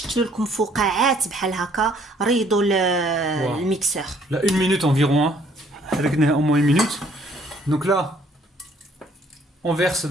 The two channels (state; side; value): normal; both; correlation 0.62